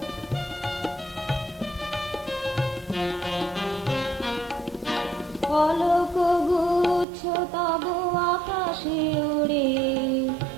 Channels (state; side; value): drops out; left; at 7.1 s